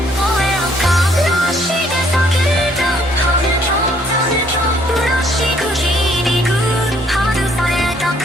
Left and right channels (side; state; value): both; normal; correlation 0.65